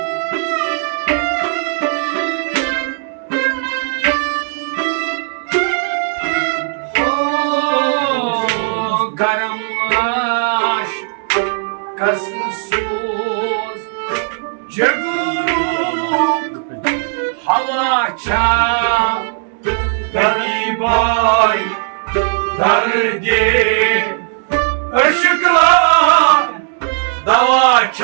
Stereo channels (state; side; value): silent; left; 62 dB below the other